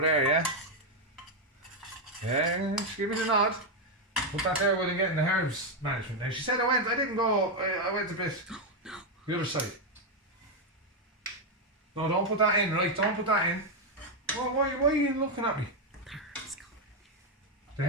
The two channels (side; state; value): both; normal; correlation 0.03